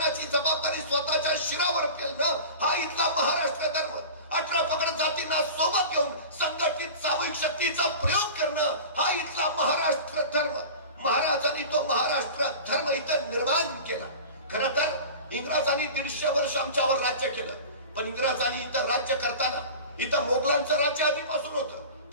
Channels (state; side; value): inverted; both; correlation -0.35